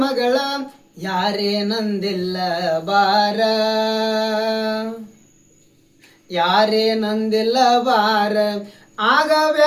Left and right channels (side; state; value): both; identical; correlation 1.00